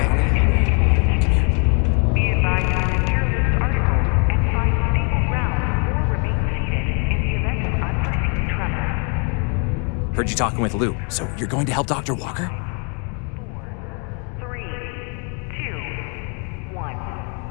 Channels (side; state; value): right; quieter; 36.8 dB